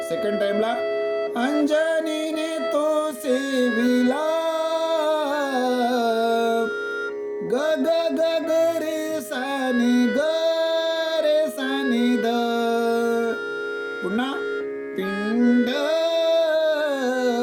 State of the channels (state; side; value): identical; both; correlation 1.00